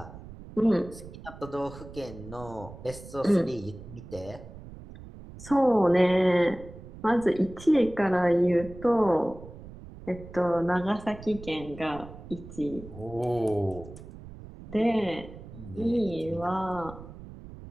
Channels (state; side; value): noise; right; rumble, 15 dB below the sound